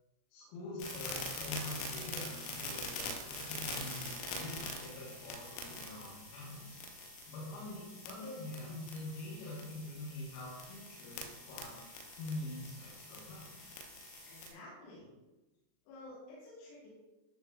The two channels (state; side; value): late; right; 38 ms